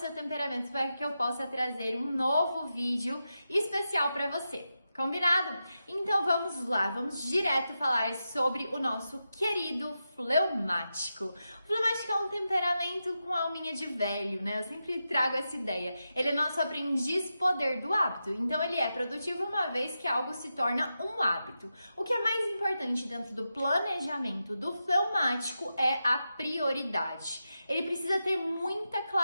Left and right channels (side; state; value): both; inverted; correlation -0.89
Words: temperamento para que eu possa trazer um novo vídeo especial para você. Combinado? Então vamos lá, vamos direto falar sobre o nosso querido fleumático. O fleumático é um temperamento com alminha de velho, né? Eu sempre trago essa ideia. Ele é nosso aprendiz poder do hábito, então ele é produtivo uma vez que algo se torna um hábito. O que é mais importante dentro do planejamento do fleumático é a prioridade. Ele precisa ter muita